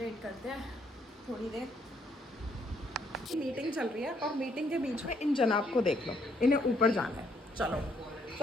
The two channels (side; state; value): both; normal; correlation 0.70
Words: करते हैं थोड़ी देर। मीटिंग चल रही है और मीटिंग के बीच में इन जनाब को देख लो, इन्हें ऊपर जाना है। चलो